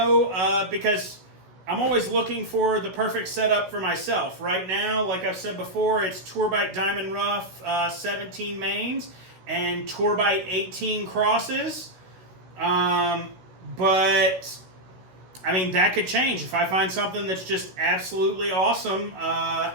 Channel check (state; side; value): late; left; 16 ms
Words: because I'm always looking for the perfect setup for myself. Right now, like I've said before, it's Tourbite Diamond Rough 17 mains and Tourbite 18 crosses. But I mean, that could change. If I find something that's just absolutely awesome,